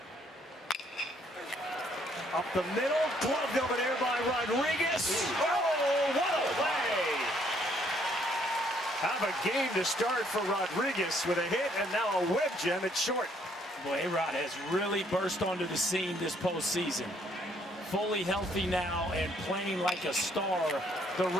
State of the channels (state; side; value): normal; both; correlation 0.67